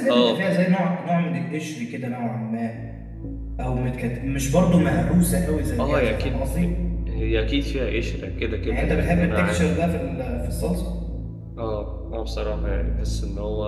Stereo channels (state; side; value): identical; both; correlation 1.00